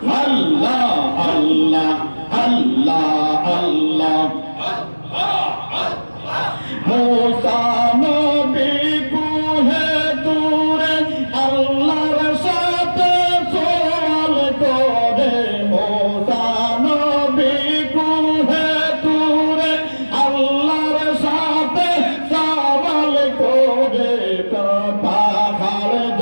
আল্লাহ আল্লাহ আল্লাহ আল্লাহ মুসা নবী কুহে তুরে আল্লাহর সাথে সওয়াল করে মুসা নবী কুহে তুরে আল্লাহর সাথে সওয়াল করে পাহাড়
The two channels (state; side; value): inverted; both; correlation -1.00